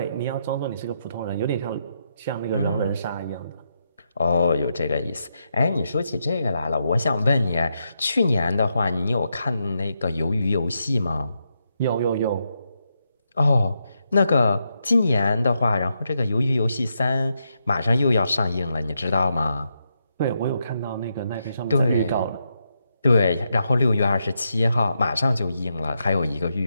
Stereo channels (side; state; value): both; inverted; correlation -0.83